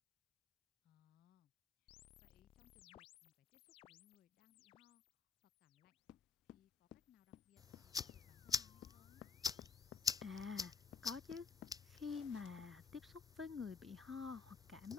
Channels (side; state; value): right; quieter; 5.2 dB